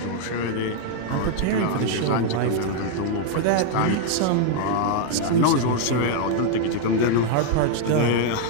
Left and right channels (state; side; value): different; both; correlation 0.00